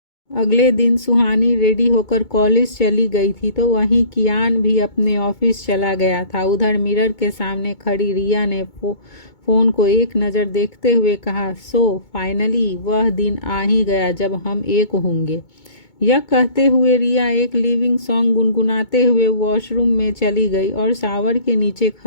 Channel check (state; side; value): late; right; 2.2 ms